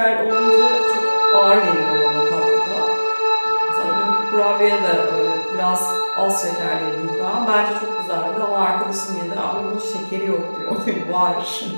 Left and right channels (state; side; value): inverted; both; correlation -1.00